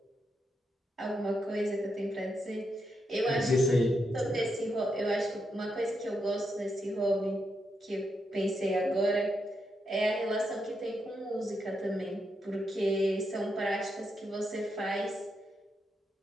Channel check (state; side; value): normal; both; correlation 0.83